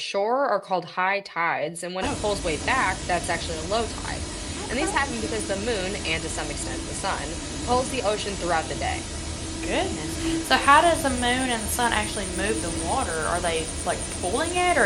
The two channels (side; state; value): both; identical; correlation 1.00